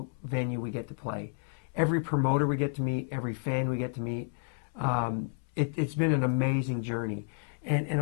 venue we get to play. Every promoter we get to meet, every fan we get to meet. It's been an amazing journey. And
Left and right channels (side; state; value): right; silent; 57 dB below the other